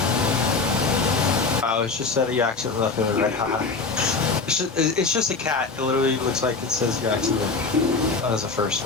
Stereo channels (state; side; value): quieter; right; 4.2 dB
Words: Oh, it's just that you accidentally left him in red. Haha. It's just a cat. It literally looks like it says you accidentally. That was the first